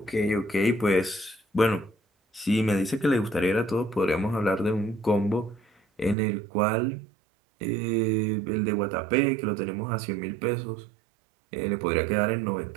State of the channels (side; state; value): left; drops out; at 6.2 s